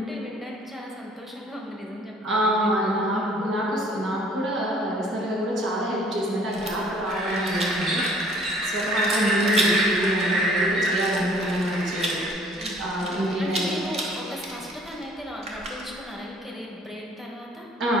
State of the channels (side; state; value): both; normal; correlation 0.56